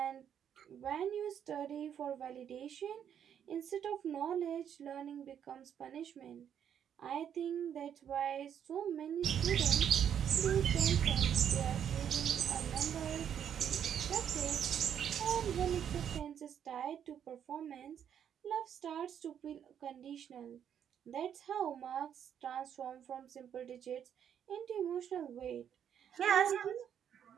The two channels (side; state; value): left; quieter; 8.9 dB